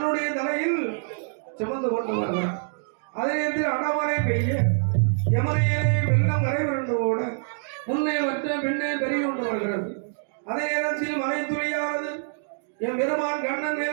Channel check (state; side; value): silent; left; digital silence